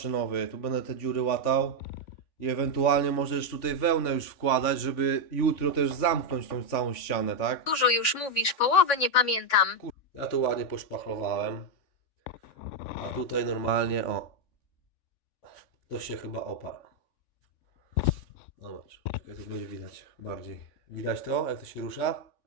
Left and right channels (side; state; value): right; late; 3.5 ms